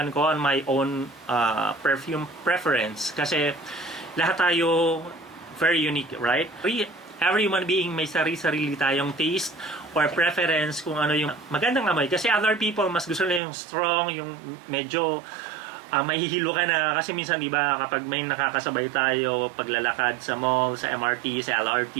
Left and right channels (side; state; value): left; drops out; at 13.4 s